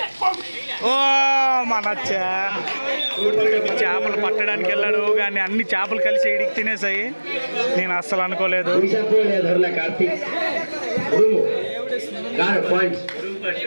ఓ మన చేపలు పట్టడానికి వెళ్ళాడు కానీ అన్ని చేపలు కలిసి ఇడికి తినేసాయి నేను అస్సలు అనుకోలేదు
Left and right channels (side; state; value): both; inverted; correlation -1.00